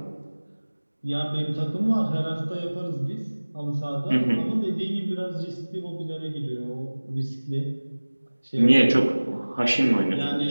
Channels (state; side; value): inverted; both; correlation -1.00